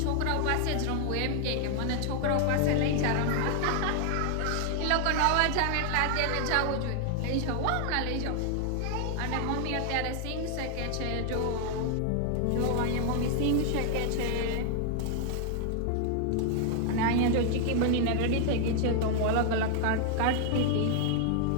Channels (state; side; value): different; both; correlation 0.00